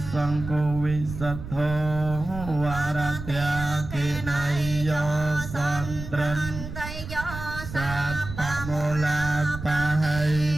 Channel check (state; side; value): noise; right; rumble, 9 dB below the sound